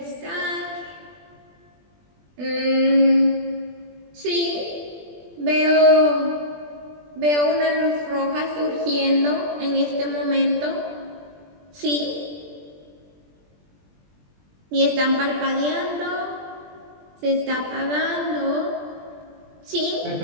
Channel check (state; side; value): late; left; 20 ms